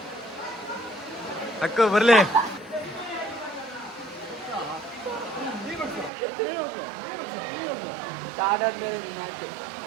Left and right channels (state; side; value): drops out; left; at 6.1 s